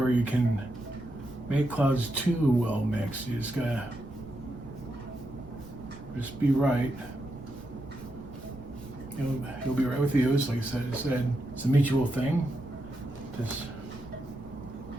you can make clouds too well mixed. You just gotta just be right. He'll be right with you. It's like I said, it's a mutual thing. Just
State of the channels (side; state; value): right; noise; rumble, 19 dB below the sound